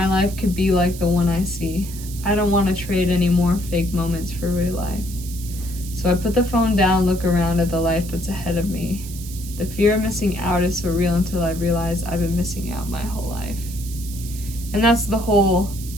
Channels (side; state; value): right; noise; hiss, 14 dB below the sound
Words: life could be like the one I see. I don't want to trade any more fake moments for real life. So I put the phone down, look around at the life that's ahead of me. The fear of missing out is so real until I realize I've been missing out my whole life. And that's the whole